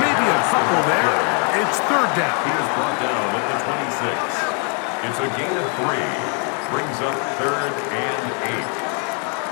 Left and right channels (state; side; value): quieter; right; 39.8 dB